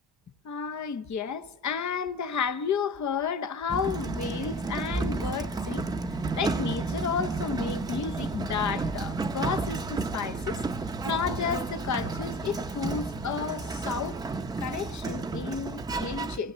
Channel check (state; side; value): normal; both; correlation 0.38